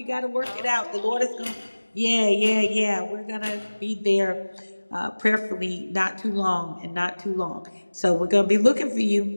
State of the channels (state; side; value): inverted; both; correlation -1.00